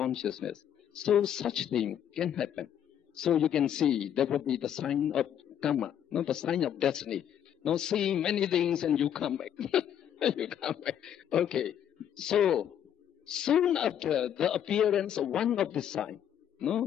So such thing can happen. So you can see that would be the sign of karma, the sign of destiny. Seeing many things and you come back. You come back. Okay. So soon after the appearance of one of the sign,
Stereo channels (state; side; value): quieter; right; 9.7 dB